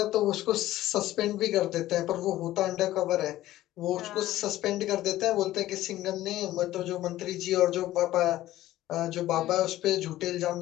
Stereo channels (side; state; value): right; quieter; 14.9 dB